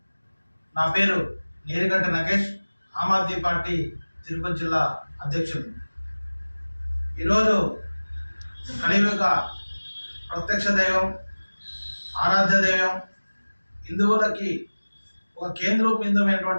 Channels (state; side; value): inverted; both; correlation -1.00